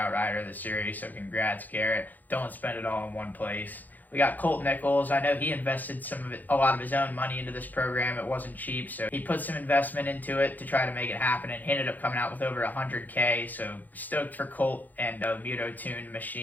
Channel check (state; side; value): late; right; 0.083 ms